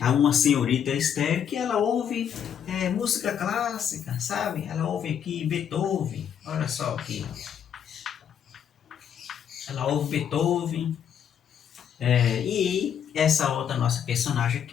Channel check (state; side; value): quieter; right; 8.6 dB